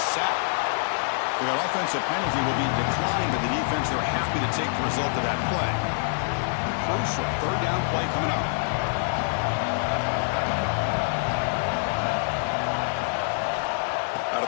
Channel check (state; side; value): silent; right; digital silence